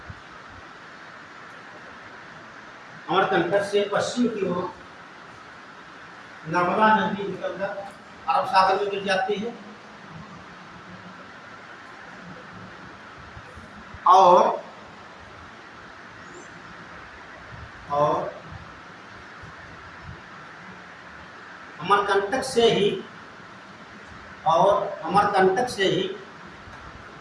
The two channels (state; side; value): identical; both; correlation 1.00